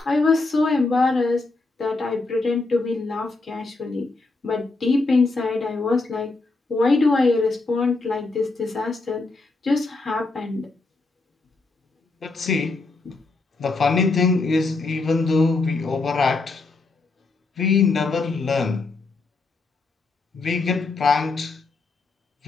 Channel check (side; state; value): right; quieter; 3.6 dB